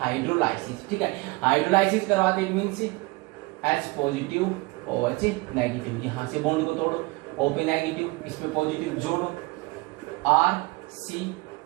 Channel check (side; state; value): left; quieter; 24.0 dB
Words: ठीक है। हाइड्रोलाइसिस करवाते means H positive OH negative, यहां से बॉन्ड को तोड़ो, O पे नेगेटिव, इस पे पॉजिटिव, जोड़ो, R C